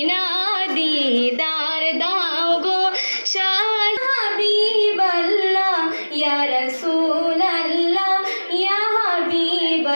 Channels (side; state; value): both; inverted; correlation -1.00